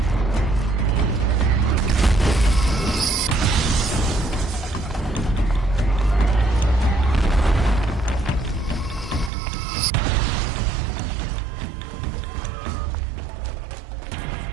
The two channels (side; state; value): left; drops out; at 9.3 s